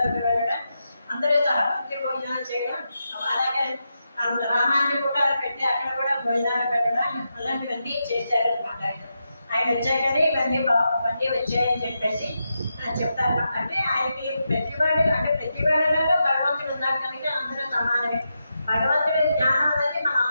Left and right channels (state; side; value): inverted; both; correlation -0.87